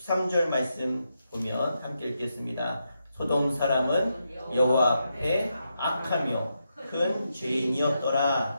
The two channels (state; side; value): inverted; both; correlation -0.84